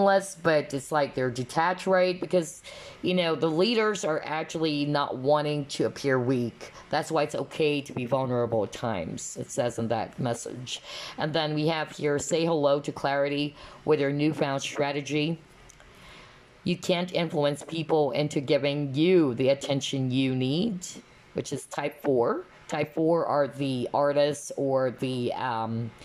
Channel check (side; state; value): both; identical; correlation 1.00